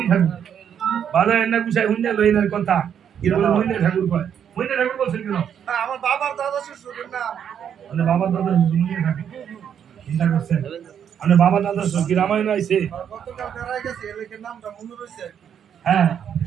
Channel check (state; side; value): quieter; left; 8.6 dB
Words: ঠাকুর বাজার না গুছাই হুন্ডা লইনার কথা এরকম মণি ঠাকুর কয় মণি ঠাকুর বলছেন কেন আমার বাবার দাদা শ্বশুরের নাম মানে বাবা দাদা মণি ঠাকুর চিন্তা করছেন মানে বাবা দাদা কি রামায়ণ আইছে গতকাল বেড়াই গেছে এলাকার নামটা মনে রয়েছে হ্যাঁ